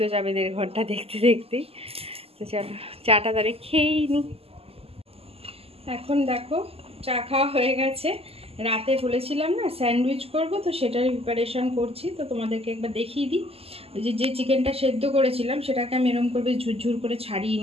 যাবে 1.5 ঘন্টা দেখতে দেখতেই। তো চলো চাটা তাহলে খেয়েই নি। এখন দেখো চা খাওয়া হয়ে গেছে, রাতে বলেছিলাম না স্যান্ডউইচ করব, তো সেটার প্রিপারেশান করছি। তো তোমাদেরকে একবার দেখিয়ে দিই। যে চিকেনটা সেদ্ধ করেছিলাম সেটাকে আমি এরকম করে ঝুরঝুর করে ছাড়িয়ে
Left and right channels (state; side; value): late; left; 0.29 ms